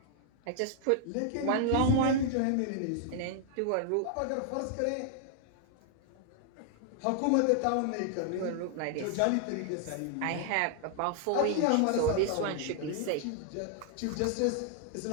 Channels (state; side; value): different; both; correlation 0.00